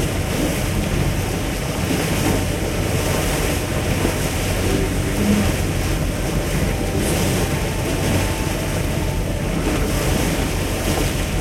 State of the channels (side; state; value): both; identical; correlation 1.00